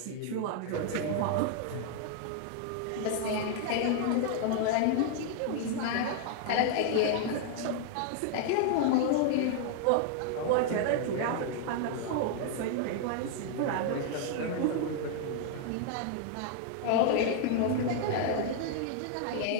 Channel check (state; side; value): different; both; correlation 0.00